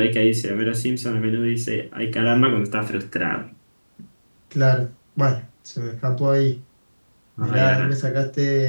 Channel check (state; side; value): inverted; both; correlation -1.00